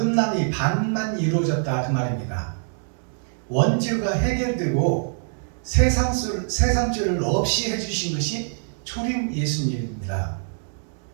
반만 이루어졌다 그 말입니다. 원죄가 해결되고 세상죄를 없이 해주신 것이 초림 예수님입니다.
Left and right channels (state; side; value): silent; left; digital silence